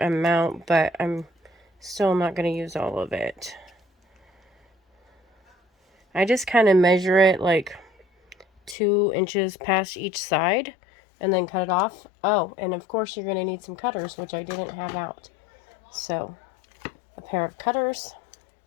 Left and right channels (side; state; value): right; drops out; at 8.8 s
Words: amount, but I'm still not going to use all of it. I just kind of measure it like 2 inches past each side and then cut it off. Oh, and of course you're going to need some cutters, which I didn't have out. So a pair of cutters,